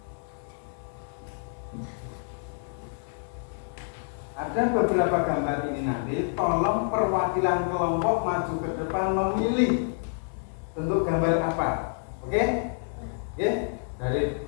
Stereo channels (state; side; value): silent; right; 59 dB below the other